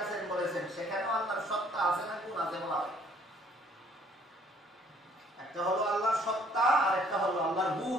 আছেন বলেছেন, সেখানেও আল্লাহর সত্তা আছে না গুণ আছে বলা হয়। একটা হলো আল্লাহর সত্তা আর একটা হলো আল্লাহর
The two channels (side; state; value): both; normal; correlation 0.61